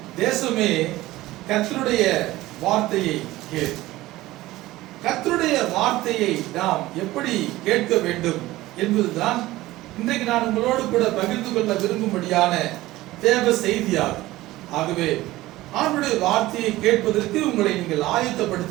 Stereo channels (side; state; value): left; quieter; 17.3 dB